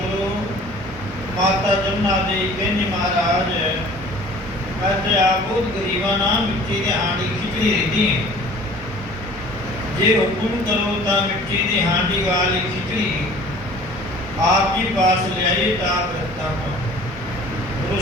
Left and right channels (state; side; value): normal; both; correlation 0.48